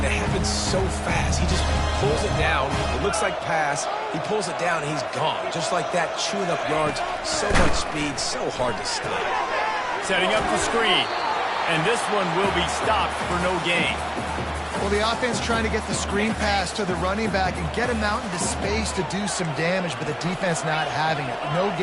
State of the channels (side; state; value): both; identical; correlation 1.00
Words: It happens so fast. He just pulls it down. It looks like pass. He pulls it down, and he's gone. Just like that, chewing up yards. So much speed, so hard to stop. Setting up the screen, and this one will be stopped for no gain. Well, the offense trying to get the screen pass to the running back and get him out into space to do some damage, but the defense not having it. No